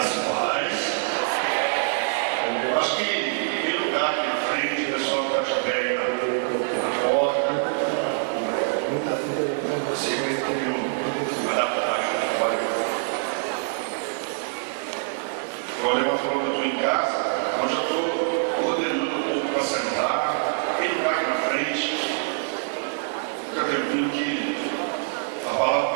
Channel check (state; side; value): silent; left; digital silence